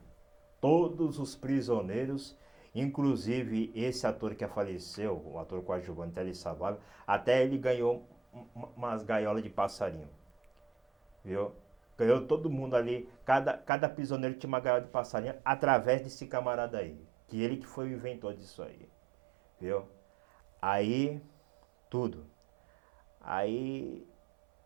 Todos os prisioneiros, inclusive esse ator que faleceu, o ator coadjuvante Telly Savalas, até ele ganhou umas gaiolas de passarinho, viu? Ganhou todo mundo ali, cada prisioneiro tinha uma gaiola de passarinho através desse camarada aí, que ele que foi o inventor disso aí, viu? Aí, tudo. Aí,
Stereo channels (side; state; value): left; drops out; at 13.7 s